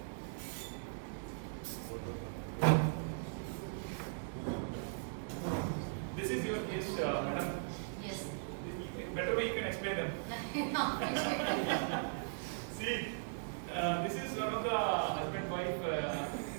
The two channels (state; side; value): silent; left; digital silence